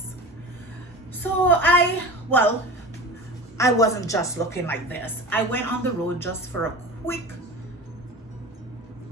So I wasn't just looking like this. I went on the road just for a quick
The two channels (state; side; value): normal; both; correlation 0.33